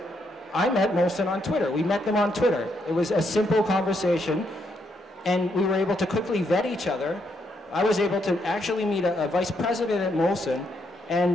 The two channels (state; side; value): normal; both; correlation 0.77